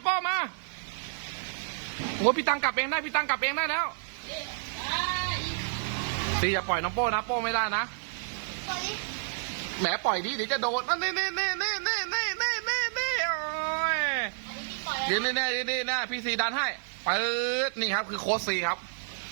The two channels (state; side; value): silent; left; 56 dB below the other